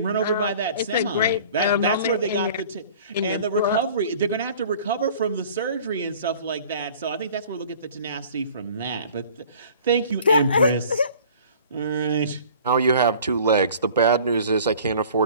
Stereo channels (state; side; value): inverted; both; correlation -0.48